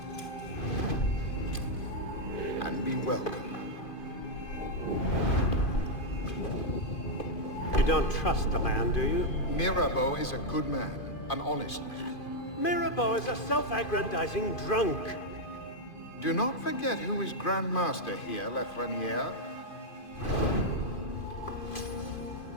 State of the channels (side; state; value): right; late; 2.5 ms